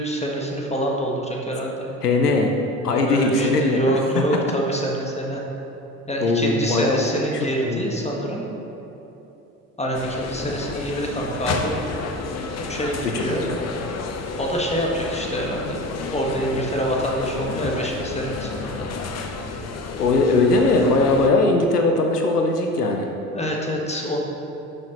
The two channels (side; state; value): both; normal; correlation 0.34